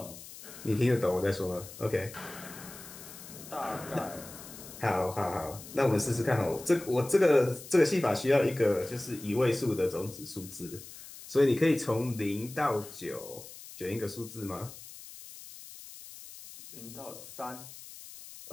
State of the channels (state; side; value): noise; left; hiss, 15 dB below the sound